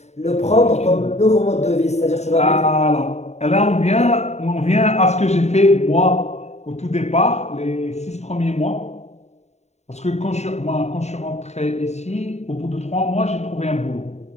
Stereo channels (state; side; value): late; right; 0.32 ms